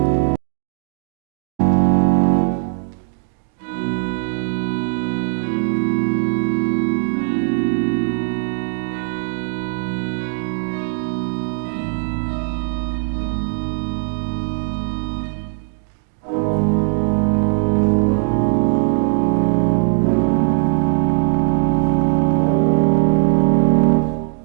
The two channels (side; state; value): left; silent; digital silence